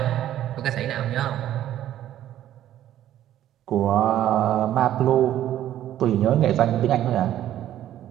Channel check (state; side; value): quieter; left; 12.1 dB